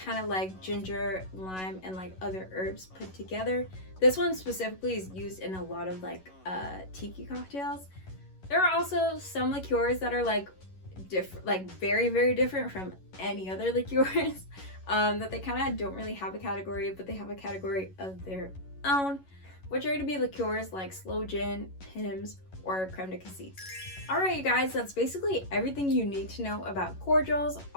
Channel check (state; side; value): late; right; 11 ms